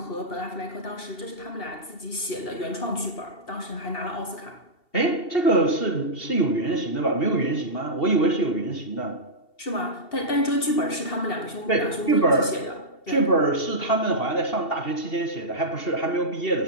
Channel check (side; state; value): right; late; 2.7 ms